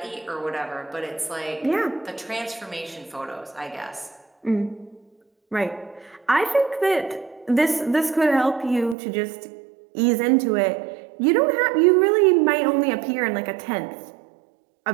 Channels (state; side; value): drops out; left; at 9.0 s